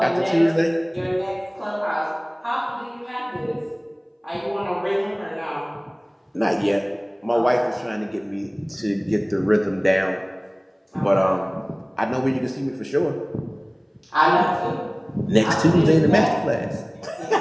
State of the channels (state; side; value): identical; both; correlation 1.00